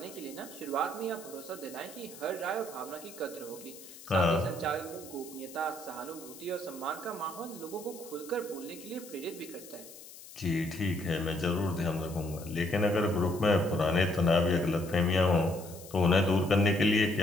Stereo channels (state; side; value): noise; left; hiss, 17 dB below the sound